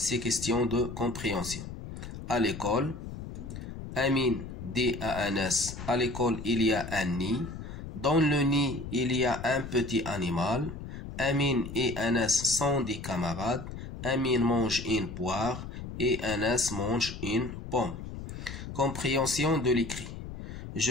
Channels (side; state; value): left; noise; rumble, 9 dB below the sound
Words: questions de compréhension. À l'école, Amine dit à Anas, à l'école il y a un nid. Dans le nid il y a un petit animal. Amine et Anas sont des camarades. Amine mange une poire et Anas mange une pomme. Compréhension de l'écrit. Je